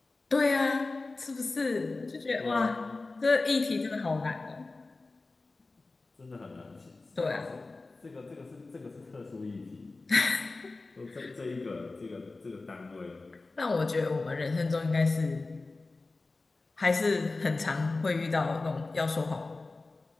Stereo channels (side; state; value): right; quieter; 3.5 dB